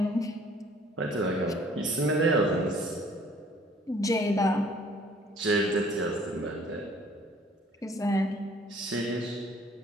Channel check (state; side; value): normal; both; correlation 0.56